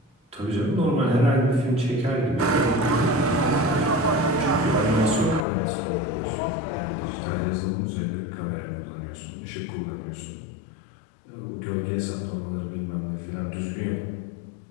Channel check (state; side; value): drops out; right; at 5.5 s